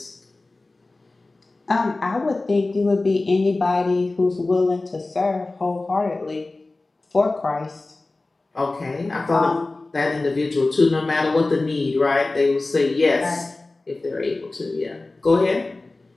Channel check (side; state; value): right; quieter; 3.2 dB